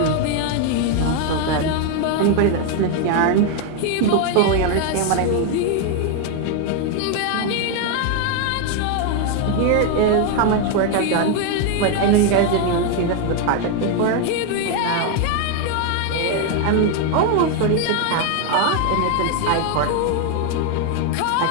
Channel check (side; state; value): both; different; correlation 0.01